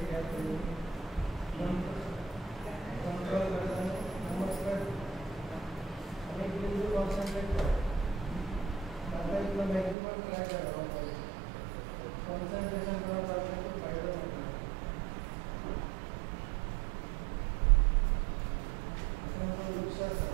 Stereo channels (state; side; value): drops out; left; at 10.0 s